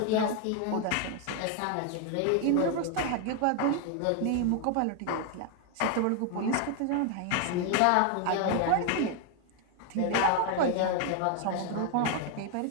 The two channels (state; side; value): different; both; correlation 0.01